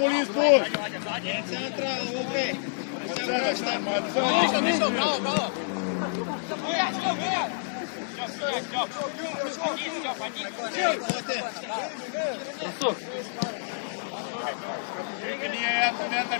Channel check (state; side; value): silent; right; digital silence